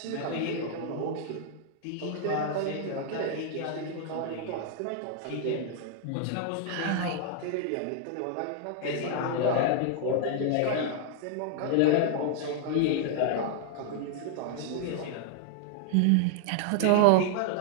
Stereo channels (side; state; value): both; different; correlation 0.00